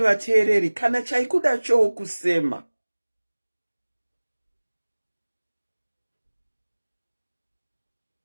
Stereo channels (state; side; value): inverted; both; correlation -1.00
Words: vateereri, kana chaikuda chokusema.